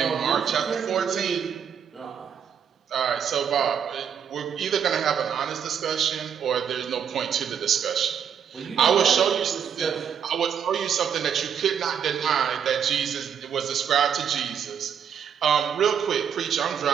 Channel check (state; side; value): quieter; left; 7.9 dB